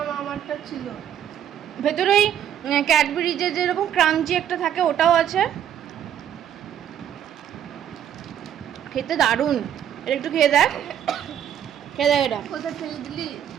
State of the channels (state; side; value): quieter; left; 9.9 dB